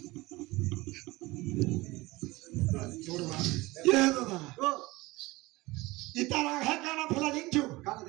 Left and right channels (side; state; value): left; quieter; 21.0 dB